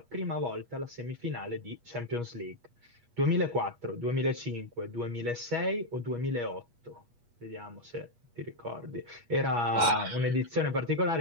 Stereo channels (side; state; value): left; late; 8.4 ms